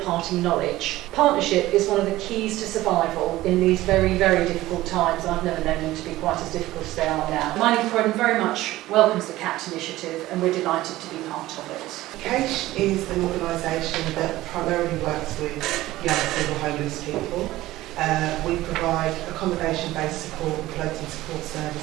knowledge. Partnership is one of the keys to survival in these very, very difficult times. I've never known them to be quite as difficult as they are now. Mind in Croydon very much welcomes the CAPT initiative, and we're delighted to be part of it. CAPT is an organisation that primarily works with young single homeless people. We provide accommodation-based support and floating support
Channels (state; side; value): quieter; left; 16.6 dB